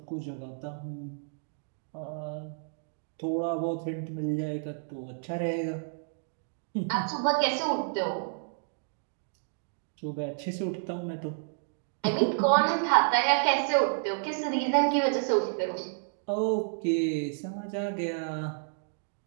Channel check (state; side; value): silent; left; digital silence